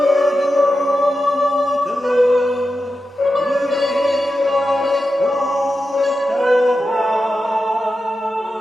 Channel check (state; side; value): normal; both; correlation 0.90